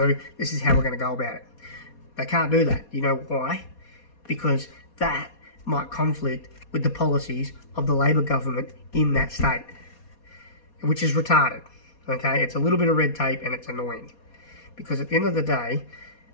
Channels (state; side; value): late; right; 4.2 ms